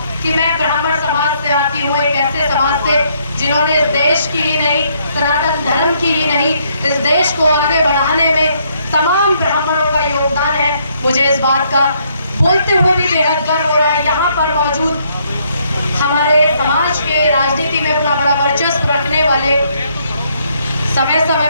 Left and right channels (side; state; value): both; inverted; correlation -0.71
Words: कि मैं ब्राह्मण समाज से आती हूँ, एक ऐसे समाज से जिन्होंने इस देश की ही नहीं, सनातन धर्म की ही नहीं, इस देश को आगे बढ़ाने में तमाम ब्राह्मणों का योगदान है। मुझे इस बात का बोलते हुए भी बेहद गर्व हो रहा है। यहाँ पर मौजूद हमारे समाज के राजनीति में अपना बड़ा वर्चस्व रखने वाले, समय समय